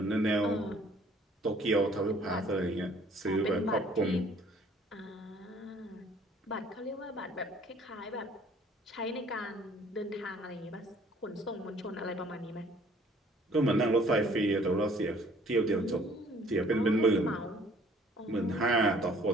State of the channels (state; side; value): normal; both; correlation 0.57